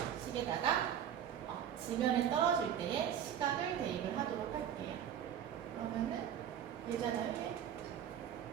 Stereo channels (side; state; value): left; quieter; 9.5 dB